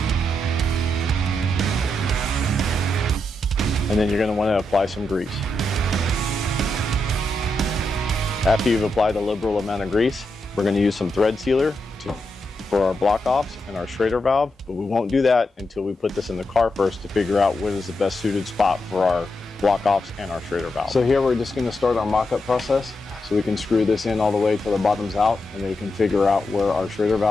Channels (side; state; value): both; normal; correlation 0.85